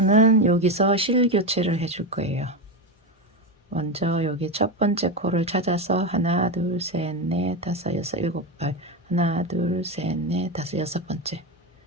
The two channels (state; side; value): normal; both; correlation 0.14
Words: 여기서 실 교체를 해줄 거예요. 먼저 여기 첫 번째 코를 찾아서 하나 둘 셋 넷 다섯 여섯 일곱 발 하나 둘 셋 넷 다섯 여섯 번째